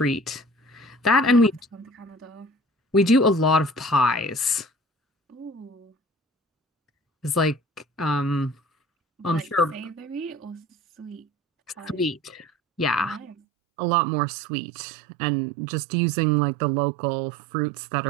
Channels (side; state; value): left; drops out; at 13.4 s